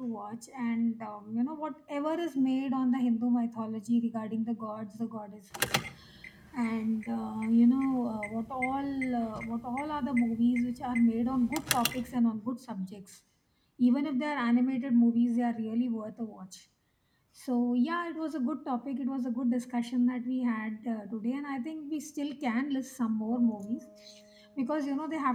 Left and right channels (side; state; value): both; identical; correlation 1.00